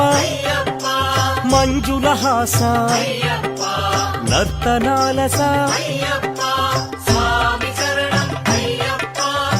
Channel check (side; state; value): both; identical; correlation 1.00